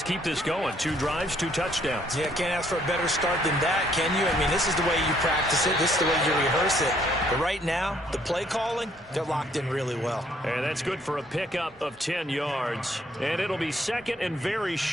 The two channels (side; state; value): both; normal; correlation 0.66